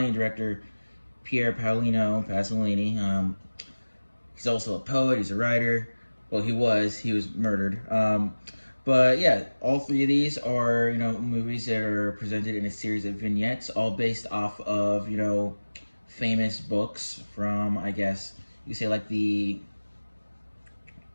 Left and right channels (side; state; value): both; inverted; correlation -1.00